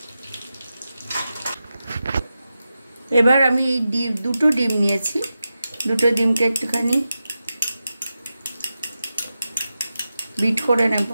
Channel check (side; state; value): both; inverted; correlation -0.91